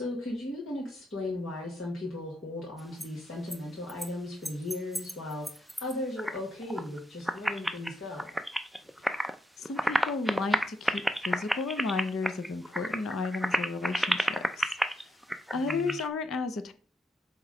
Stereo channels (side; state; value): both; normal; correlation 0.81